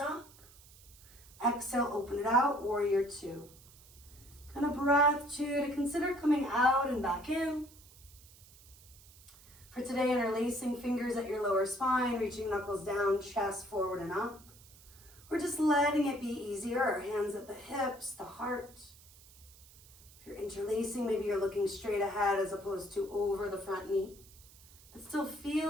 Exhale, open it out, warrior two. Kind of breath two to consider coming out and back in. For today, interlacing fingers at your lower spine, reaching knuckles down, chest forward and up. We're just letting it be easier. Our hands at the hips, the heart. If you're interlacing, maybe you're looking straight ahead as opposed to over the front knee. But still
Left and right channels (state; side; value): noise; right; hiss, 23 dB below the sound